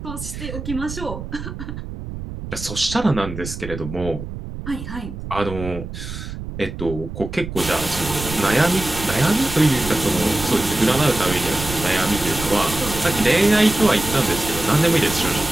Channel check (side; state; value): right; noise; rumble, 9 dB below the sound